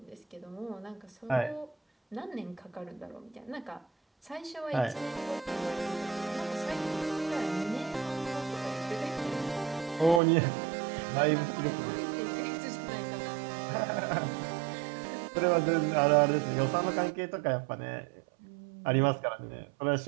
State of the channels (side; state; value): left; drops out; at 10.2 s